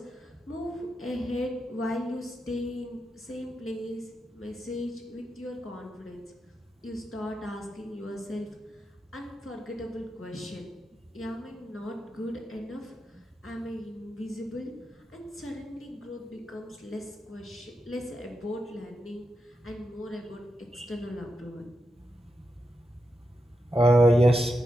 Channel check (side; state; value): both; normal; correlation 0.87